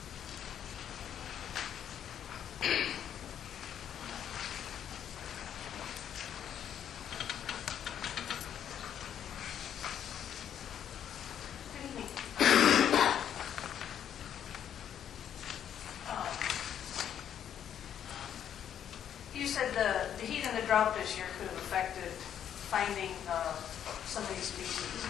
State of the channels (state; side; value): quieter; right; 9.5 dB